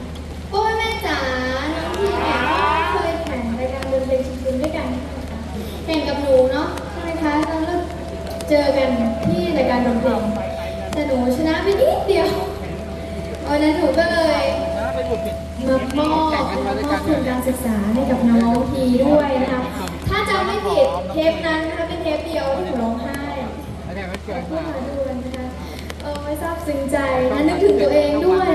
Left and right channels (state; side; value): identical; both; correlation 1.00